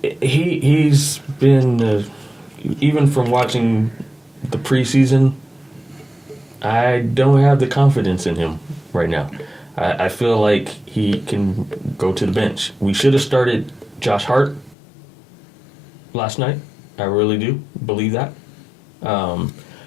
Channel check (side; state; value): right; drops out; at 14.8 s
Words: He's been, even from watching the preseason, I don't have the confidence in him right now. I feel like he can go to the bench. We should have started Josh Hart last night. I really do believe that.